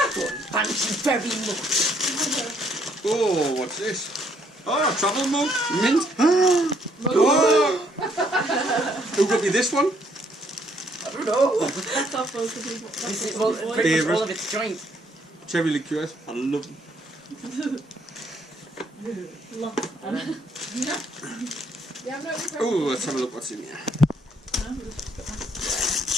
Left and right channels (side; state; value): both; normal; correlation 0.68